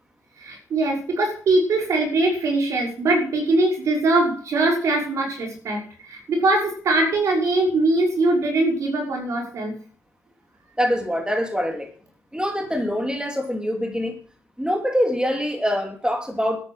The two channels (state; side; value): normal; both; correlation 0.70